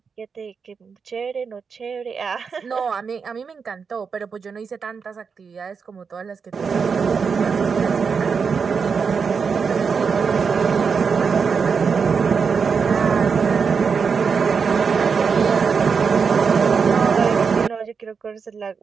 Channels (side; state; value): left; quieter; 5.7 dB